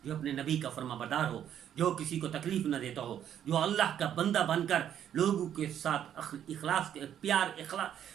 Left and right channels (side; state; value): left; quieter; 9.9 dB